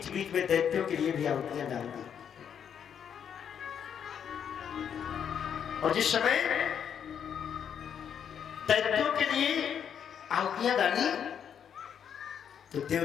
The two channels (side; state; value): right; quieter; 8.2 dB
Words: बीच में दैत्यों के लिए भी आहुतियां डाल दी। और जिस समय दैत्यों के लिए आहुतियां डाली तो